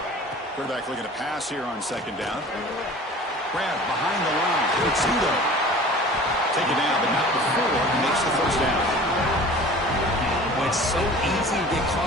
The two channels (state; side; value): normal; both; correlation 0.43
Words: Quarterback looking to pass here on second down. Grab behind the line. It's Udo. Take it down, but not before he makes the first down. When it's so easy to get